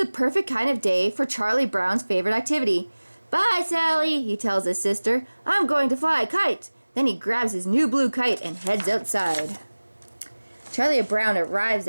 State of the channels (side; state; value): both; inverted; correlation -1.00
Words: perfect kind of day for Charlie Brown's favorite activity. Bye, Sally, he tells his sister. I'm going to fly a kite. Then he grabs his new blue kite and heads outside. Charlie Brown arrives